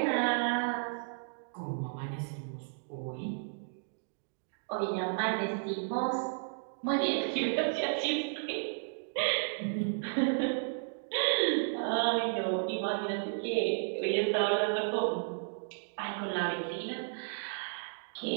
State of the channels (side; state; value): left; silent; digital silence